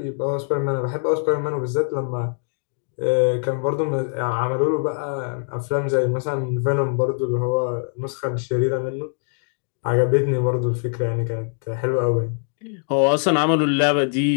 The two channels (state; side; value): silent; right; digital silence